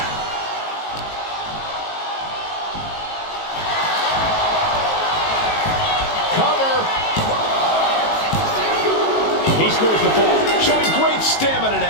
Cover. He scores the fall, showing great stamina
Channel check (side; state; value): right; late; 19 ms